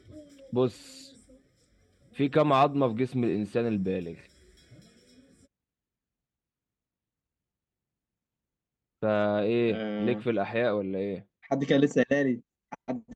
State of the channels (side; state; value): both; identical; correlation 1.00